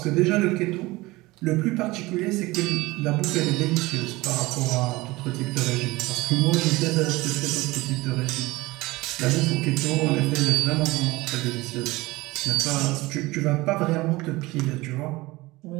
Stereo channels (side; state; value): left; quieter; 20.8 dB